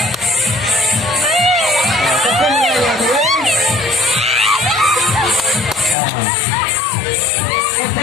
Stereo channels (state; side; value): drops out; right; at 6.0 s